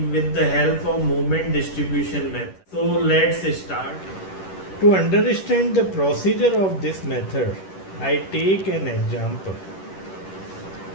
with the help of moment distribution method. So let's start. To understand the procedure of this method, I take an example.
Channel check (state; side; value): late; right; 10 ms